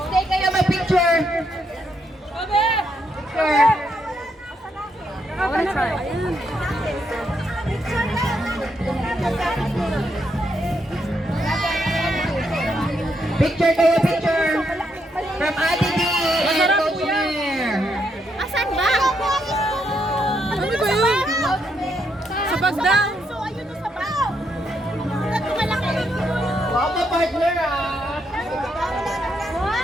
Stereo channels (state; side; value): normal; both; correlation 0.78